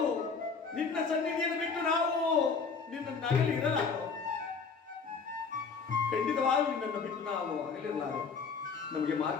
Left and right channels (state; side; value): quieter; right; 5.2 dB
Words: ನಿನ್ನ ಸನ್ನಿಧಿಯನ್ನು ಬಿಟ್ಟು ನಾವು ನಿನ್ನ ನಗಲಿ ಇರಲಾರು. ಖಂಡಿತವಾಗೂ ನಿನ್ನನ್ನು ಬಿಟ್ಟು ನಾವು ಅಗಲಿರಲಾರು. ನಮಗೆ